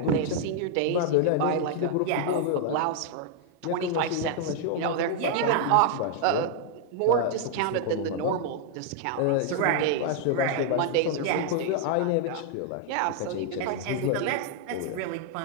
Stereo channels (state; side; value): different; both; correlation 0.00